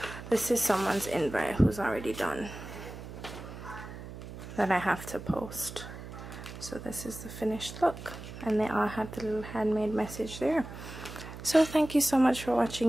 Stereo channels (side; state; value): right; noise; hum, 12 dB below the sound